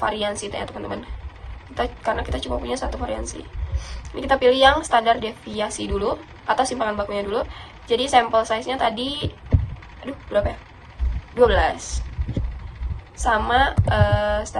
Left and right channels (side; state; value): both; identical; correlation 1.00